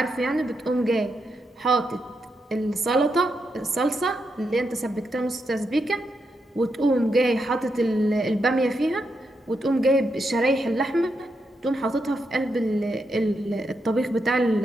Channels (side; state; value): both; normal; correlation 0.83